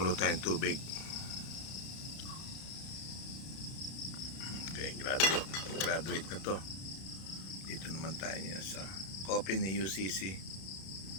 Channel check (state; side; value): late; right; 32 ms